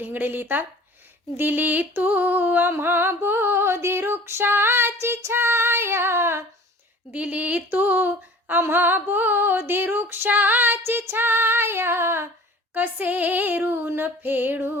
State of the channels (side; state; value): both; normal; correlation 0.45